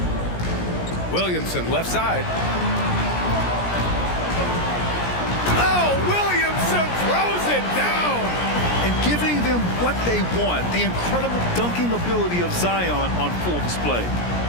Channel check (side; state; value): right; late; 17 ms